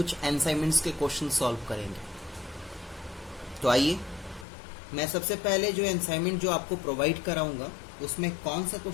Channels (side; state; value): right; drops out; at 4.5 s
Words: असाइनमेंट्स के क्वेश्चन सॉल्व करेंगे। तो आइए, मैं सबसे पहले जो असाइनमेंट जो आपको प्रोवाइड कराऊंगा उसमें कौन सा